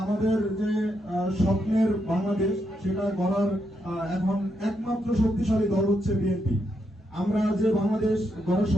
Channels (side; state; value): both; normal; correlation 0.80